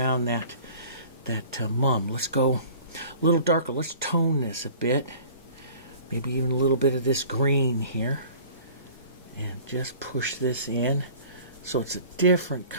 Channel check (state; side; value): inverted; both; correlation -0.47